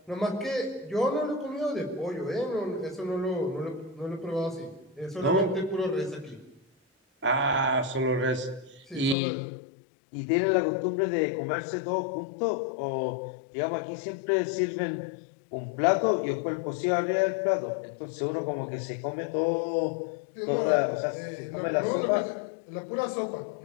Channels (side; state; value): right; drops out; at 9.2 s